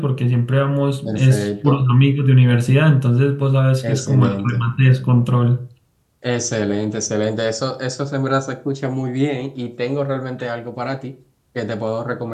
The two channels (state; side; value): identical; both; correlation 1.00